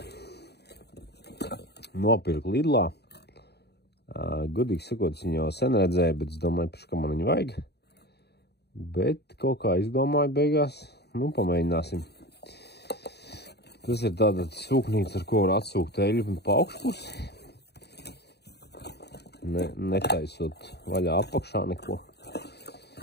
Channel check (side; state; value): right; late; 0.48 ms